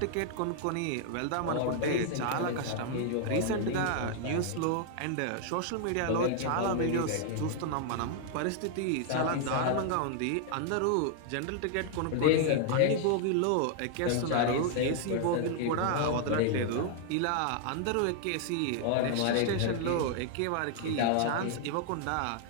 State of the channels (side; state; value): both; different; correlation 0.00